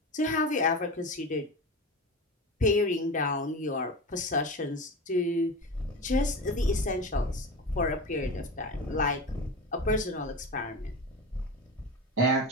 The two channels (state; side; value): normal; both; correlation 0.26